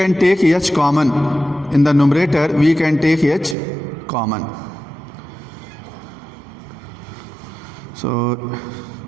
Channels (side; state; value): left; drops out; at 3.6 s